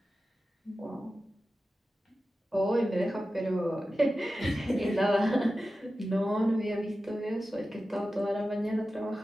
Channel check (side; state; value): both; normal; correlation 0.94